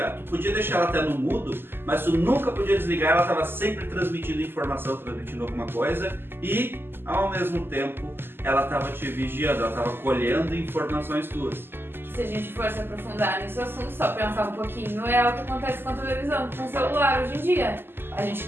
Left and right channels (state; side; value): late; left; 0.10 ms